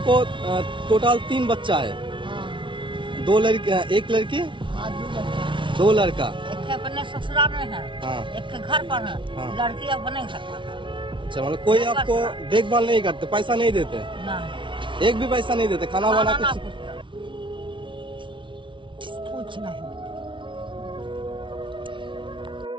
टोटल 3 बच्चा है? हाँ, 2 लड़की, 1 लड़की, हाँ, 2 लड़का। 2 लड़का। एक है अपने ससुराल में है, हाँ। एक के घर पर है, हाँ। लड़की अपने घर पर है। अच्छा, मतलब कोई आपको देखभाल नहीं करते, पैसा नहीं देते? ना, एक भी पैसा नहीं देते, खाना खाना वाना ना कुछ? कुछ नहीं।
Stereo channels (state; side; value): late; left; 0.24 ms